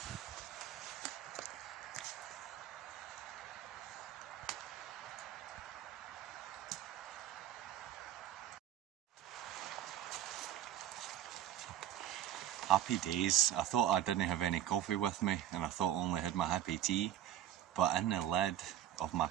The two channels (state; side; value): quieter; left; 11.6 dB